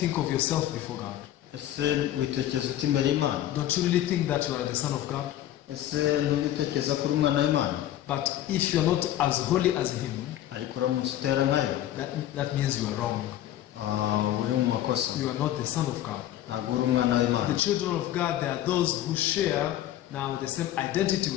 think of yourself before God? Ese witekereza uti imbere y'Imana? Don't you really think that you are the son of God? Ese ntubitekereza ko uri umwana w'Imana? But if you are not as holy as Him, ariko uramutse utera nkayo, that means you are wrong. uri mu makosa. You are not the son of God. Ntabwo uri umwana w'Imana. The children of God, they are those who share now the same identity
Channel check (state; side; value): quieter; right; 12.7 dB